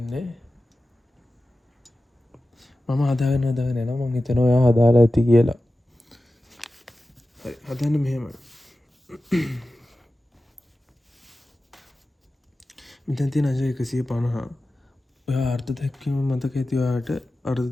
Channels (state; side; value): normal; both; correlation 0.94